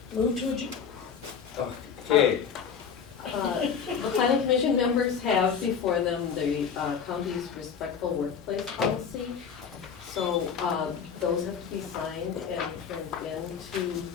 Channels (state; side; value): quieter; right; 6.9 dB